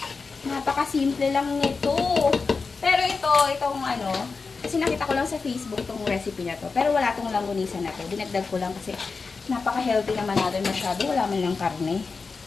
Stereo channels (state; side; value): quieter; right; 4.5 dB